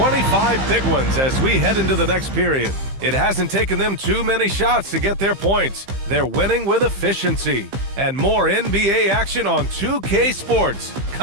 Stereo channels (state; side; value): late; left; 15 ms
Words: big ones as we head into the next period. It hasn't taken them too many shots to get their points. They're winning with efficiency. And more NBA action on 2K Sports